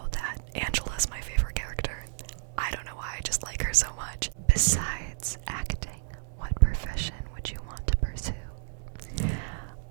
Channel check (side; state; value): left; silent; digital silence